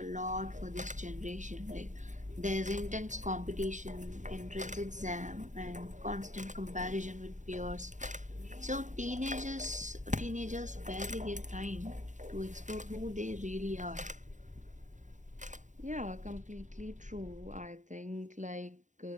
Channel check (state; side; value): late; left; 0.36 ms